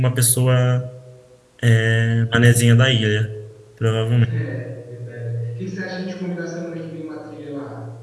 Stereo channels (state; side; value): identical; both; correlation 1.00